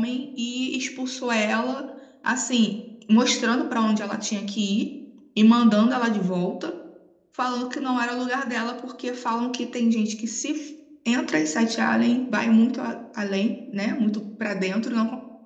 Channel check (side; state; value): both; identical; correlation 1.00